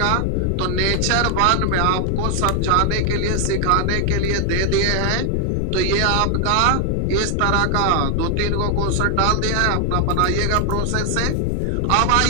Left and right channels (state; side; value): different; both; correlation 0.00